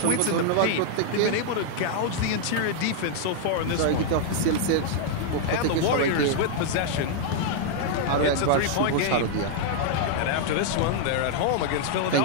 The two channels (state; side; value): different; both; correlation 0.00